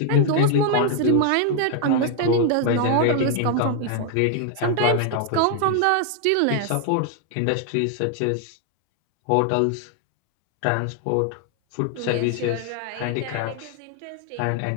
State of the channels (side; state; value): both; different; correlation 0.00